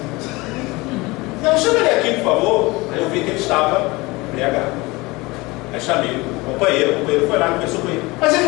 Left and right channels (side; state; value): right; quieter; 22.9 dB